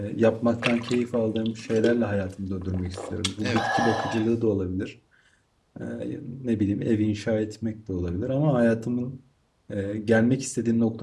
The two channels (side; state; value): both; identical; correlation 1.00